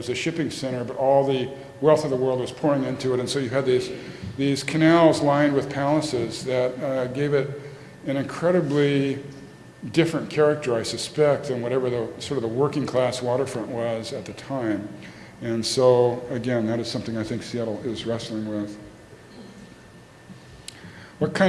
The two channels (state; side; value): identical; both; correlation 1.00